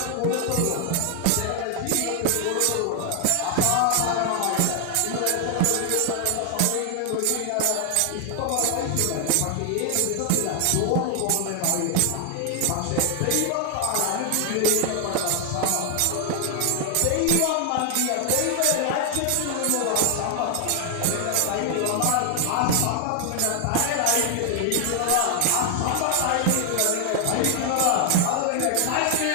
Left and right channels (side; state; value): both; different; correlation 0.00